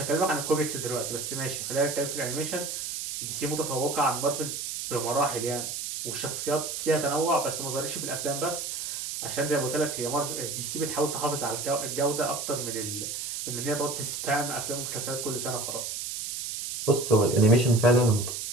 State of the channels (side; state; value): right; noise; hiss, 5 dB below the sound